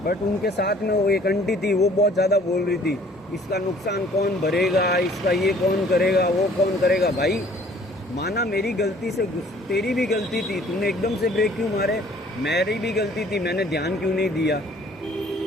बट उनके साथ में वो एक आंटी थी, वो बहुत ज़्यादा बोल रही थी, इसका नुकसान कौन भरेगा, इसका ये कौन करेगा, वो कौन करेगा। भाई माना मेरी गलती से तेरी भी गलती थी, तूने एकदम से ब्रेक क्यों मारे, मेरी भी गलती थी, मैंने ध्यान क्यों नहीं दिया।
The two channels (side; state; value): both; normal; correlation 0.56